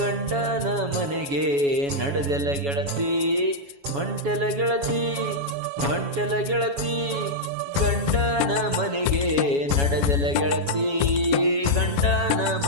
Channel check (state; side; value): late; left; 7.2 ms